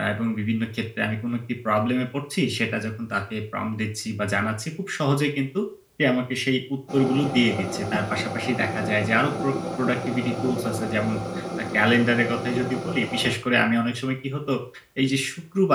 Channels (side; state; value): both; identical; correlation 1.00